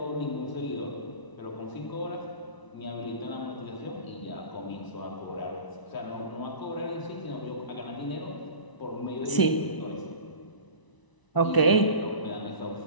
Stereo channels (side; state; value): right; late; 1.0 ms